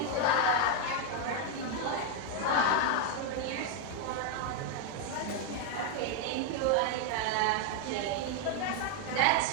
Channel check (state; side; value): different; both; correlation 0.01